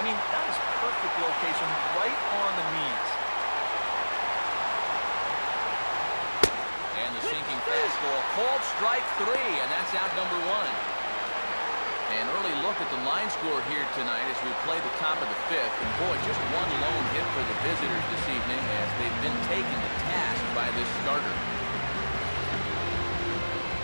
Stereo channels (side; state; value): both; inverted; correlation -1.00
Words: mean, that is perfect location right on the knees. And the sinking fastball called strike 3, and that's out number 1. An early look at the line score here tonight as we play the top of the 5th. And boy, just 1 lone hit for the visitors this evening as they've been taken to task by this starter.